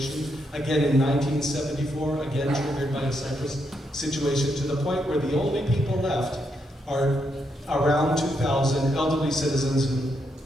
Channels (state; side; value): normal; both; correlation 0.79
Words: Again in 1974, again triggered by a Cyprus situation, to the point where the only people left are around 2,000 elderly citizens who